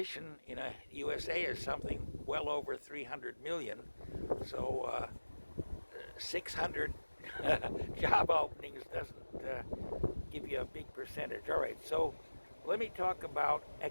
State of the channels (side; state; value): both; inverted; correlation -1.00